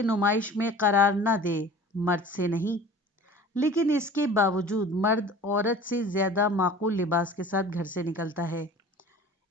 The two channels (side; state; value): both; normal; correlation 0.42